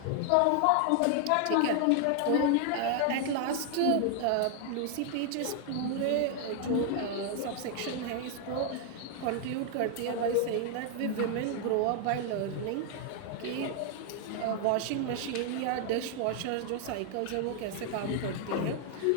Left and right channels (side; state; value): both; different; correlation 0.00